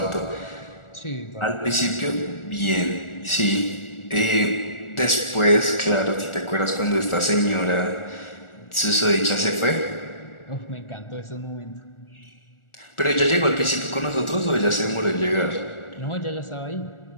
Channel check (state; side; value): late; right; 1.4 ms